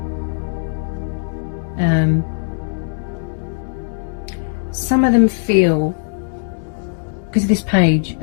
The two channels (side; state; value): right; silent; 66 dB below the other